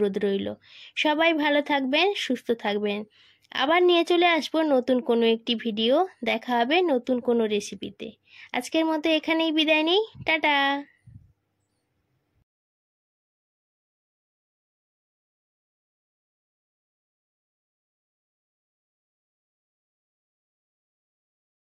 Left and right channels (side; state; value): both; identical; correlation 1.00